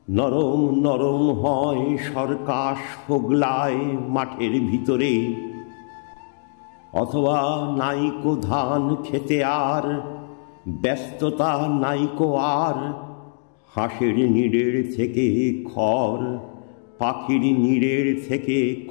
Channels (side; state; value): right; silent; 64 dB below the other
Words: নরম নরম হয় সরকাশ হোগলায় মাঠের ভিতরে। অথবা নাইকো ধান খেতে আর ব্যস্ততা নাইকো আর, হাঁসের নিড়ের থেকে খড়, পাখির নিড়ের থেকে